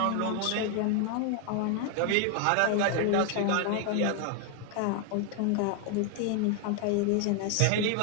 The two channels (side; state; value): both; different; correlation 0.00